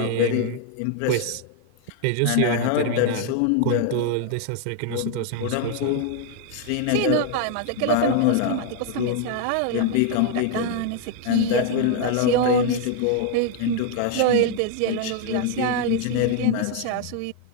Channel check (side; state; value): both; different; correlation 0.00